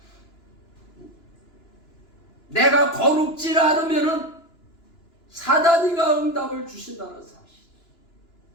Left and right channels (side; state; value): right; late; 2.9 ms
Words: 내가 거룩지 않으면 사단이가 응답을 주신다는 사실.